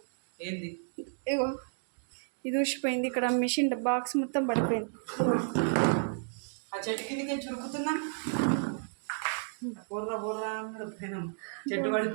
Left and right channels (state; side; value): silent; left; digital silence